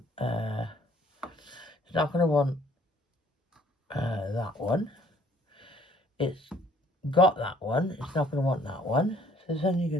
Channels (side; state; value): both; normal; correlation 0.60